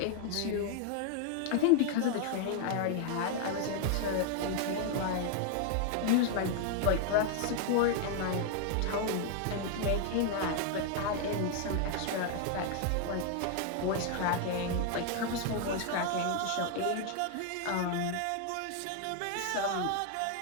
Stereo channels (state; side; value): different; both; correlation 0.00